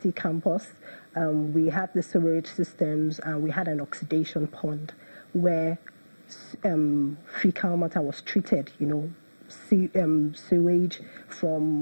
campus, we had the sewerage systems and we had an oxidation pond where fecal matter was treated, sewage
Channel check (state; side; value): inverted; both; correlation -1.00